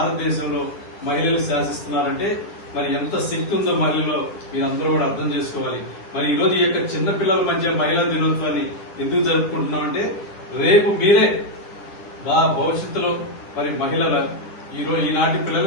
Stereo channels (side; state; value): right; late; 10 ms